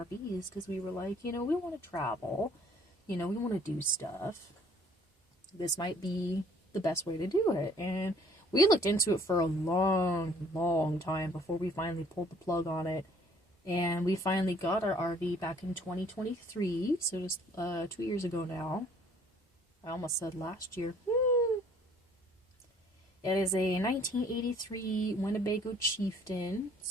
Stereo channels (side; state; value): both; normal; correlation 0.58